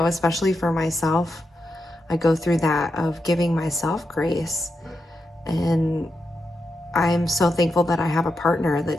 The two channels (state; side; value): normal; both; correlation 0.86